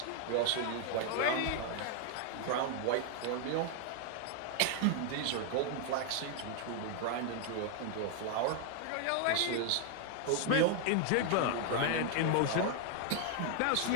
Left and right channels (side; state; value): both; different; correlation 0.00